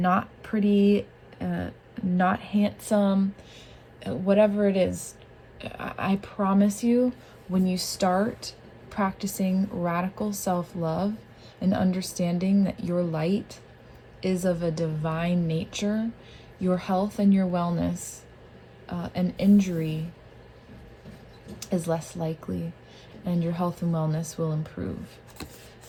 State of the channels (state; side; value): identical; both; correlation 1.00